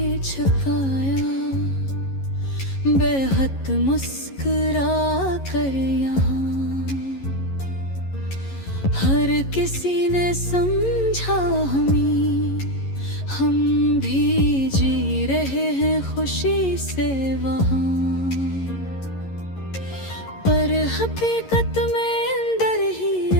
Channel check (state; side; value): late; right; 11 ms